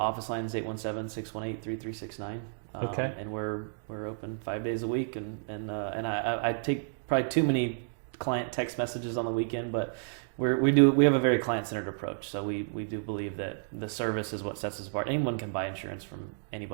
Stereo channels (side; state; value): left; silent; digital silence